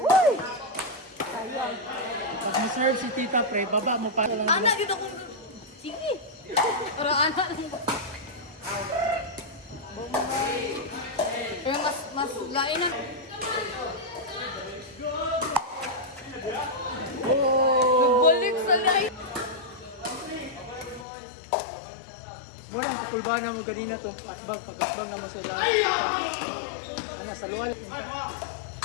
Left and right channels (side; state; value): right; drops out; at 21.1 s